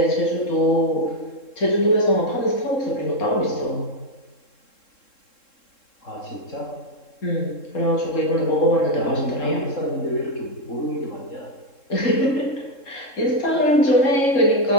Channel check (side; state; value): right; late; 3.7 ms